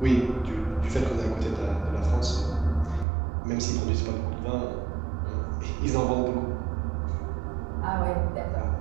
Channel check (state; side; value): drops out; left; at 3.1 s